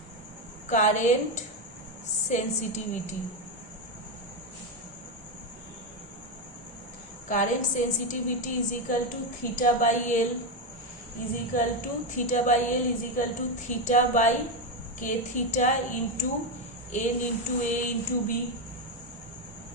current sensitivity. Current sensitivity is equal to theta by L is equal to theta by L is equal to theta by K theta into n into A into B.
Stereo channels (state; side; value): normal; both; correlation 0.09